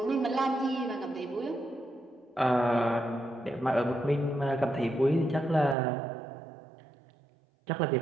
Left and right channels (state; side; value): drops out; left; at 5.8 s